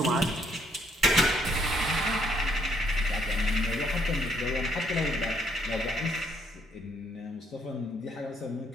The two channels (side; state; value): both; normal; correlation 0.69